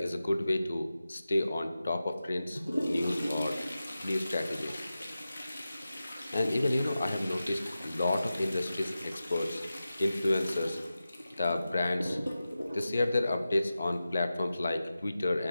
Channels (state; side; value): inverted; both; correlation -0.94